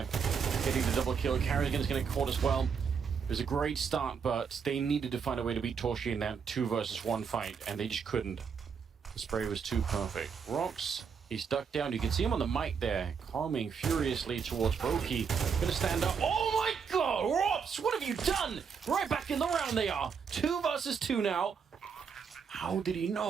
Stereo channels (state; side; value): quieter; left; 6.4 dB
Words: Getting the double kill. Carrigan's going to get caught as well. It was a great start, but they needed to find a way to beat Torchia in that 2 versus 1 fight, and they just couldn't. The spray was too perfect. Rox, he's ducked down. You can see him on the mic there, coming furiously towards Brokey. Going to stand up. Oh my god, Rox, what have you done? Right back in the round they are. 2 versus 2 now. How did he